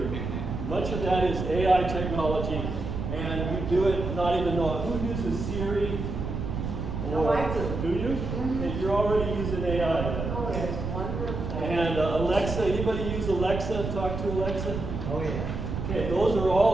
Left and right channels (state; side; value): noise; right; rumble, 4 dB below the sound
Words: much of that is AI technology, and you do it not even know it. Who uses Siri? Or I do. Do you? Mm-hmm. Okay, you're already using AI. Oh, it's wonderful. And Alexa, anybody use Alexa? Talk to Alexa? Oh, yeah. Okay, those are